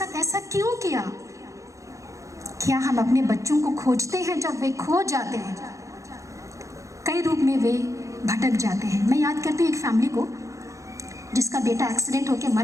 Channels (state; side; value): late; left; 0.15 ms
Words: ऐसा क्यों किया? क्या हम अपने बच्चों को खोजते हैं जब वे खो जाते हैं? कई रूप में वे भटक जाते हैं। मैं याद करती हूँ एक फैमिली को जिसका बेटा एक्सीडेंट होकर